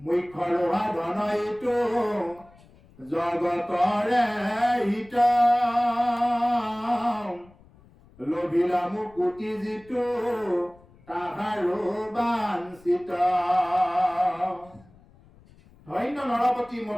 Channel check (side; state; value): left; noise; rumble, 26 dB below the sound